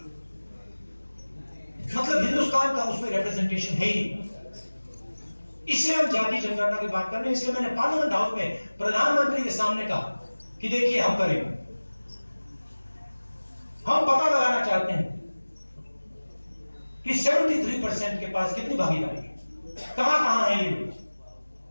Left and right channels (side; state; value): both; inverted; correlation -1.00